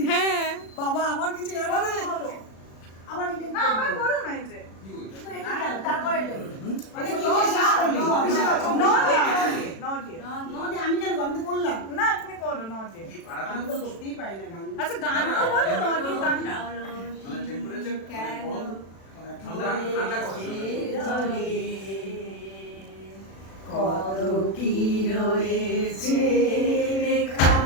হ্যাঁ বাবা আমার কিছু জানা নেই আবার না আবার করো না এই যে তারপরে আমি কেন আমি তো করলাম না তুমি করো নটি আমি তো করতেই পারি না গান আচ্ছা গান তো বলো নটি গান মানে টেম্পারেচার কেন ঠান্ডা ঠান্ডা করে কত কি রয়েছে লেখা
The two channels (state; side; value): late; right; 36 ms